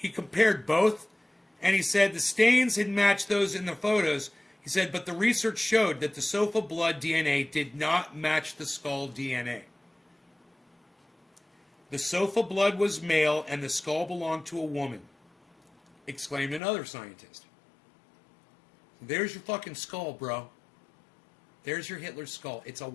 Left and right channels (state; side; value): drops out; right; at 16.6 s